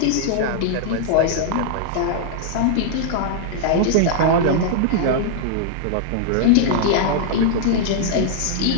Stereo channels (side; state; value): both; different; correlation -0.01